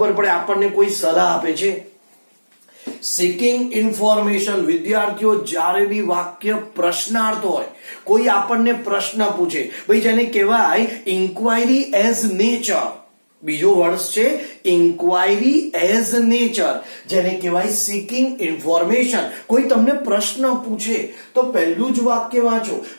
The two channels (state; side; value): inverted; both; correlation -1.00